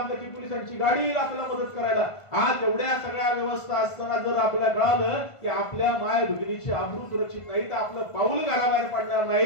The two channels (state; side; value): late; right; 1.5 ms